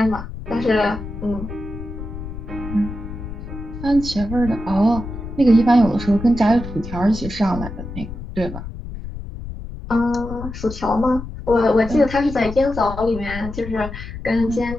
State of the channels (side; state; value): left; noise; rumble, 10 dB below the sound